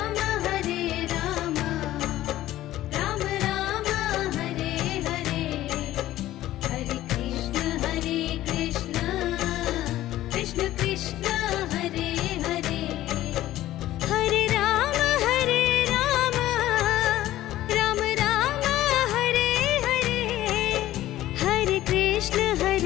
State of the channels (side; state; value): right; quieter; 14.6 dB